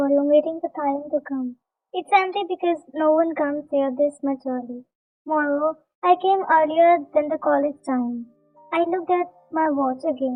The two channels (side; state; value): both; identical; correlation 1.00